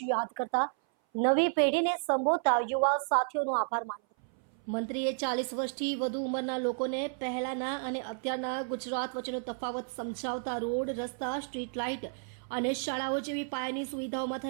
યાદ કરતા નવી પેઢીને સંબોધતા યુવા સાથીઓનો આભાર માન્યો। મંત્રીએ 40 વર્ષથી વધુ ઉંમરના લોકોને પહેલાના અને અત્યારના ગુજરાત વચ્ચેનો તફાવત સમજાવતા રોડ, રસ્તા, સ્ટ્રીટ લાઇટ અને શાળાઓ જેવી પાયાની સુવિધાઓમાં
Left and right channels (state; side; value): silent; left; 57 dB below the other